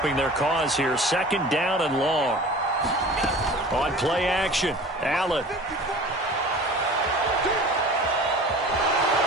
their cause here. 2nd down and long. On play action, Allen.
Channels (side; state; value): both; normal; correlation 0.41